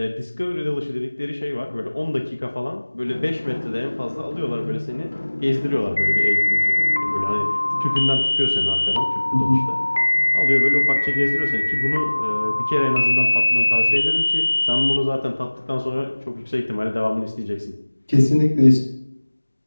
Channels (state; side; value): inverted; both; correlation -1.00